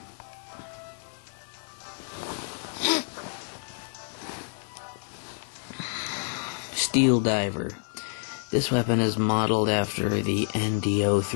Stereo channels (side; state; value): right; silent; 59 dB below the other